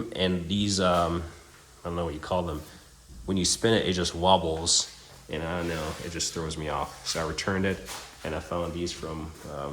And these, I don't know what you call them. When you spin it, it just wobbles. And I don't know, it just throws me off. So I returned it, and I found these from,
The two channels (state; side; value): identical; both; correlation 1.00